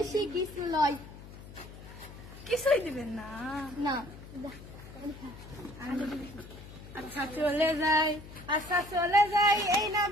কিছু লয়। কিছুই দিবেন না। আচ্ছা চলে যাই এই না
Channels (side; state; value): left; noise; hum, 16 dB below the sound